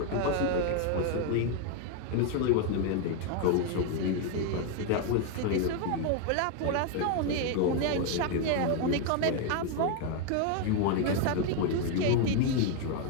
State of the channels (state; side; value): different; both; correlation 0.01